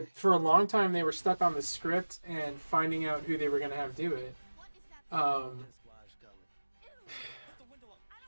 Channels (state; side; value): inverted; both; correlation -1.00